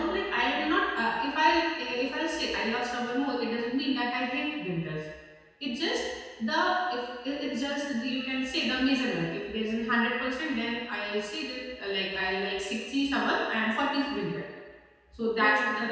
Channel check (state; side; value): identical; both; correlation 1.00